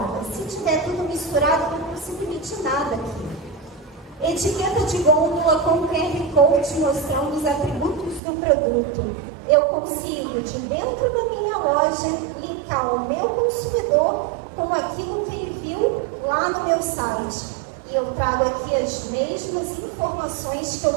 Se tiver tudo misturado, eu não consigo emitir nada aqui. Etiqueta de gôndola com QR Code mostrando os atributos do produto. Eu consigo, de dentro da minha loja, linkar o meu consumidor com aquilo que ele viu lá no meu site. E eu trago aqui as mesmas informações que eu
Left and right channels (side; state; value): left; drops out; at 8.2 s